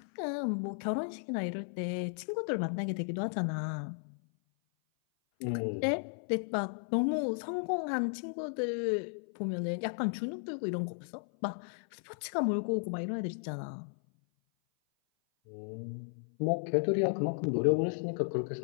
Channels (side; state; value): right; silent; 55 dB below the other